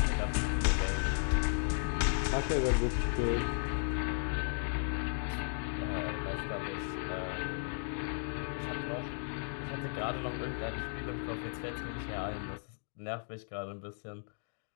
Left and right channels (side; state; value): right; silent; digital silence